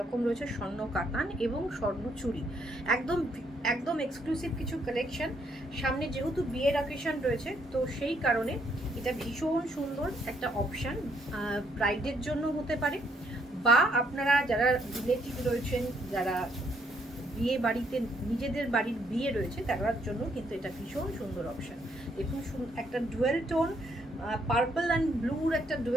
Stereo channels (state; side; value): normal; both; correlation 0.71